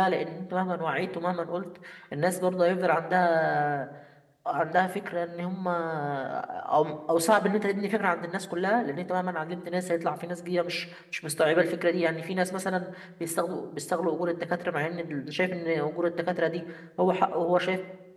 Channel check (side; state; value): both; identical; correlation 1.00